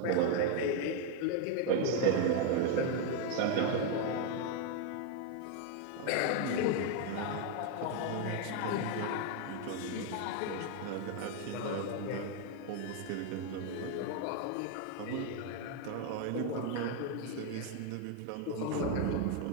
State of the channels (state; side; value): different; both; correlation 0.01